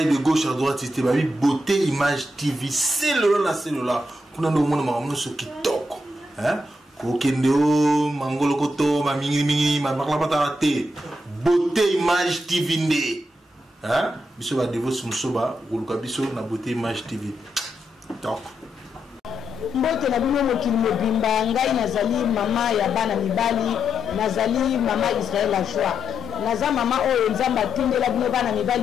gauche à droite, c'était Babi Beauté Image TV. C'est le là. Qu'on a le monde sur qui toque. Hein? Kokendo, Mangolokoto, ma mingi, ma maklapatarate. Beauté Image TV né. Hein? Biso va devo sumsoba, ou le biso na Beauté Image TV. Donc. Mbote na bino mokili mobimba ngai nazali mama ya bana mibali nazali mama Israël la joie naza mama oyo nzamba tindela bino bana mibali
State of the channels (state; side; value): normal; both; correlation 0.82